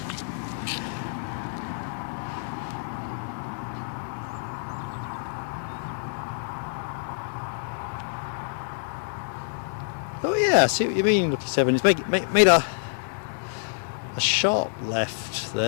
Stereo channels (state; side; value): silent; right; digital silence